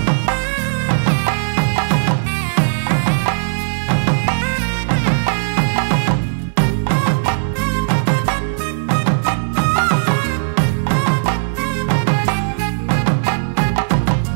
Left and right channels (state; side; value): silent; left; digital silence